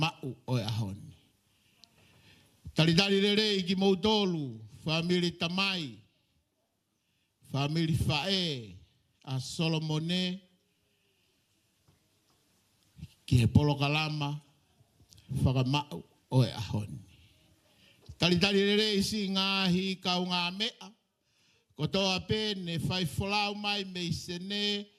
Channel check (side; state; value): both; identical; correlation 1.00